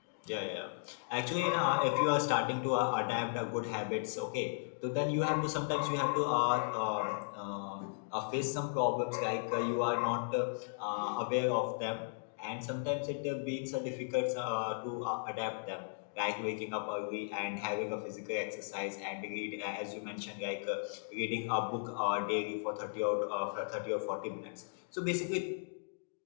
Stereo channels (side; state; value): right; silent; digital silence